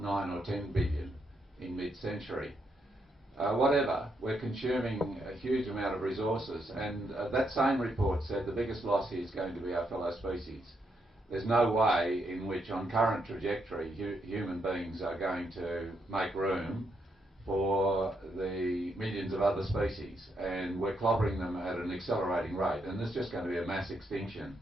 9 or 10 billion in mid-century. Whatever, we're consuming a huge amount of resources, and that same report said the biggest loss here is going to be our fellow species. There's no way in which, on current trajectory, human beings are going to make room for the millions of other species, and we're clobbering them at an accelerating rate, and there's just going to be a mass extinction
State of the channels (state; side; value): normal; both; correlation 0.78